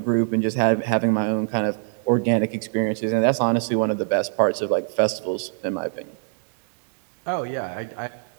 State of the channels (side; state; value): left; silent; digital silence